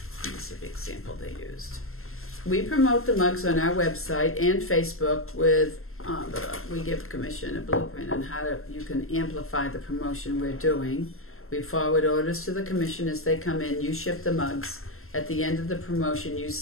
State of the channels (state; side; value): late; right; 0.62 ms